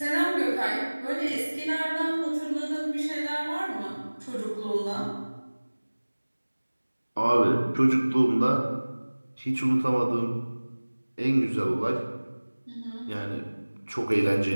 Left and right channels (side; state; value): both; inverted; correlation -1.00